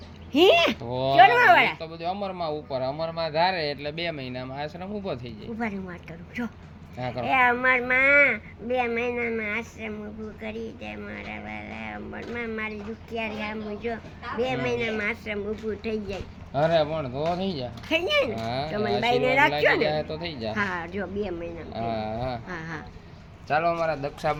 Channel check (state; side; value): identical; both; correlation 1.00